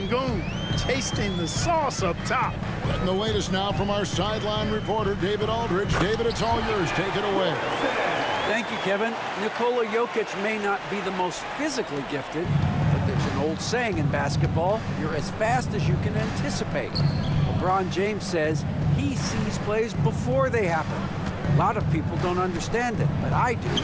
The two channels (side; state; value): both; identical; correlation 1.00